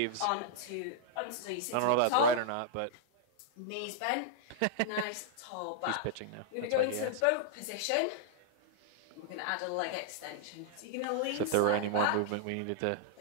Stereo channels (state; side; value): different; both; correlation -0.01